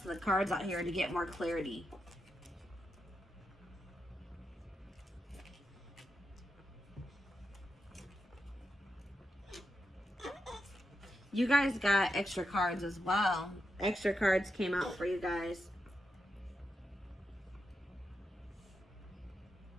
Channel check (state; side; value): normal; both; correlation 0.86